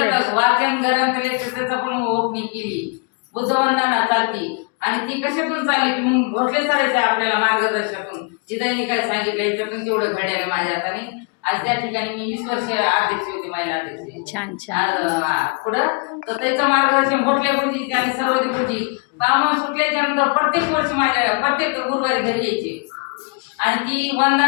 वाचन ग्रंथालय त्याचा पण ओपनिंग केली. बुद्धवंदना चालती आणि ती कशातून चालली की मग भोसले सरायच्या आपल्याला मार्गदर्शनातून जिथं काय सांगितलं याच्यातून तेवढं घड्याने माझ्या हाताने. आज त्या ठिकाणी मी 20 वर्ष अध्यक्ष होते, महिला अध्यक्ष. छान छान. पुढं तर त्याचं मार्गदर्शन भोसले गुरुजी आणि सर्वोदय गुरुजी काम सुटल्याच्या नंतर प्रत्येक वर्षी माझ्या प्रत्येक गुरुवारी घरी यायचे आणि ती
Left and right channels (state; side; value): quieter; right; 33.5 dB